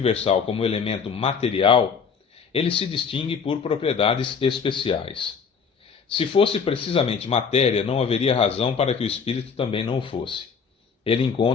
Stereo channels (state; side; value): quieter; right; 6.1 dB